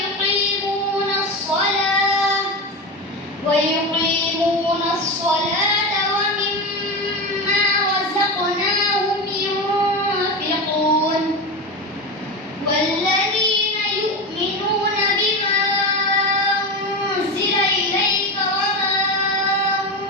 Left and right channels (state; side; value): normal; both; correlation 0.20